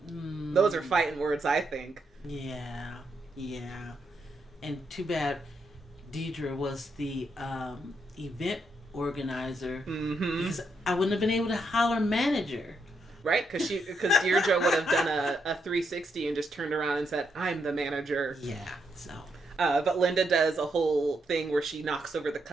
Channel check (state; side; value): normal; both; correlation 0.79